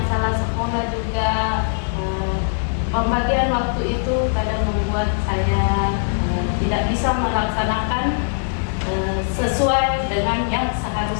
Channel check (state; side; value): silent; right; digital silence